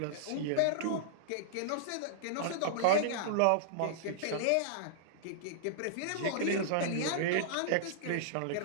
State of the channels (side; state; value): both; different; correlation -0.02